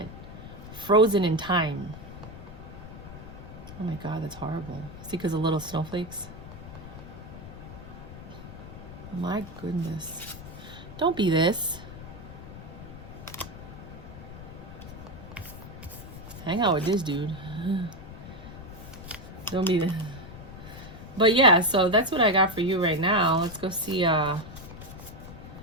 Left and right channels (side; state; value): left; noise; rumble, 13 dB below the sound